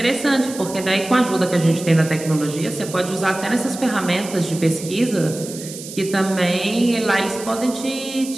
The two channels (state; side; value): noise; right; hiss, 12 dB below the sound